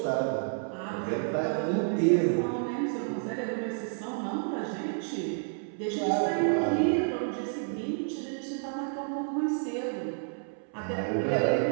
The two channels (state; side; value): silent; left; 58 dB below the other